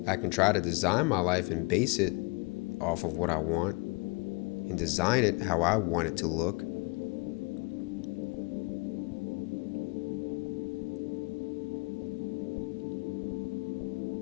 I can try to design my life and base it off of what I want and design it how I want it to look.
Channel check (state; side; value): quieter; right; 28.3 dB